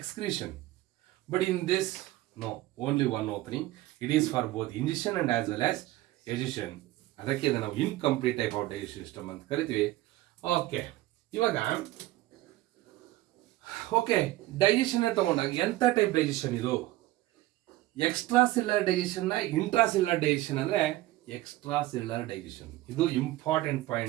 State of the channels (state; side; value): quieter; left; 16.8 dB